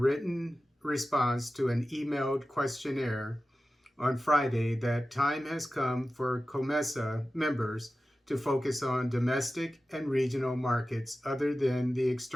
response to an emailed questionnaire on Friday that time has come for COMESA members to focus on domestic and regional markets other than the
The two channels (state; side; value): normal; both; correlation 0.94